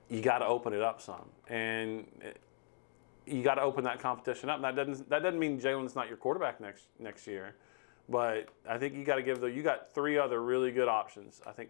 you got to open it up some. And you got to open that competition up. That doesn't mean Jalen's not your quarterback next year, but I think you got to you got 3 other really good options. I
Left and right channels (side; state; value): right; silent; 53 dB below the other